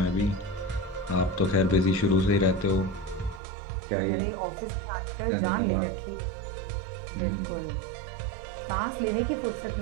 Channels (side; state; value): left; drops out; at 3.4 s